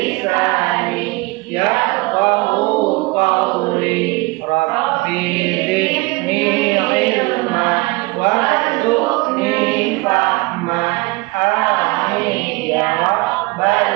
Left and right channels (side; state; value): left; quieter; 24.3 dB